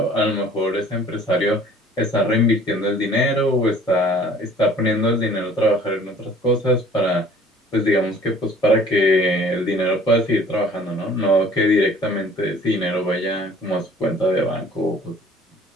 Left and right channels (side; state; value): both; normal; correlation 0.52